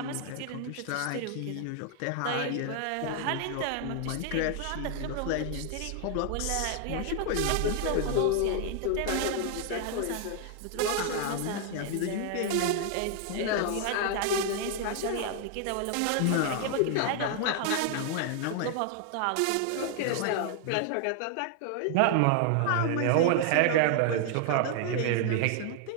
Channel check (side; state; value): both; different; correlation 0.00